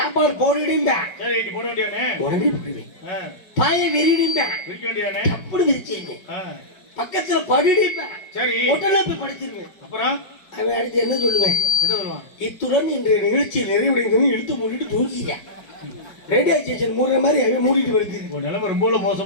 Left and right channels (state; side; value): late; right; 5.3 ms